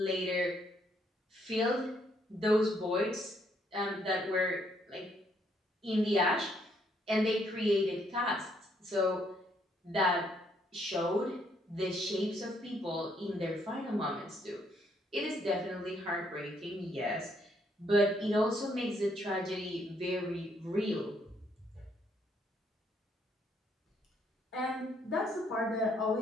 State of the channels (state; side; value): normal; both; correlation 0.71